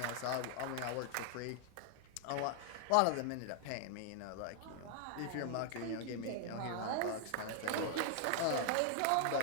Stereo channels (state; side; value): different; both; correlation 0.00